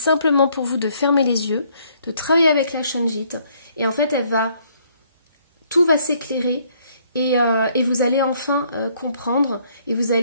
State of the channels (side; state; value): both; inverted; correlation -0.65